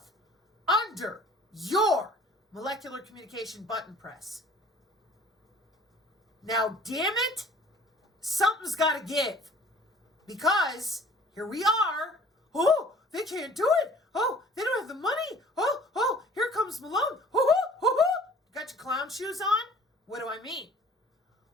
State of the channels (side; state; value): both; normal; correlation 0.50